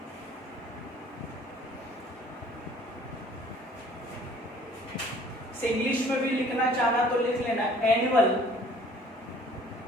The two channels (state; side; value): normal; both; correlation 0.54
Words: इंग्लिश में भी लिखना चाहना तो लिख लेना, एनुअल